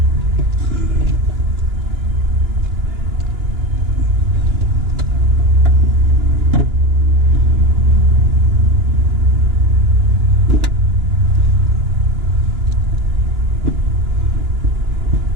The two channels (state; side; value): late; left; 2.9 ms